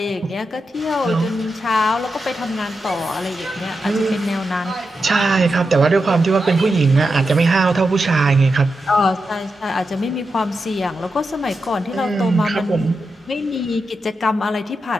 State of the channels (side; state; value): both; normal; correlation 0.88